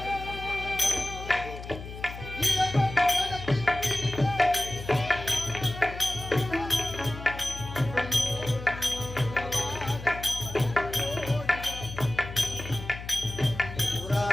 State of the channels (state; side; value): noise; left; hum, 11 dB below the sound